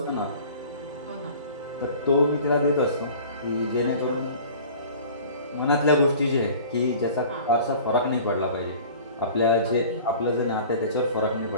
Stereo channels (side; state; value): both; inverted; correlation -0.44